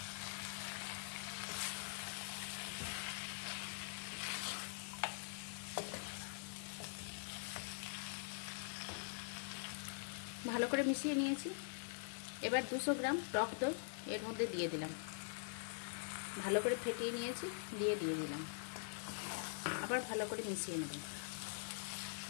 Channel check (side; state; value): right; silent; digital silence